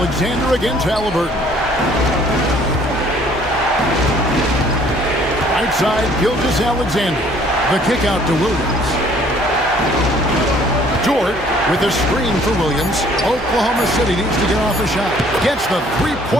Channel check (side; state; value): both; normal; correlation 0.58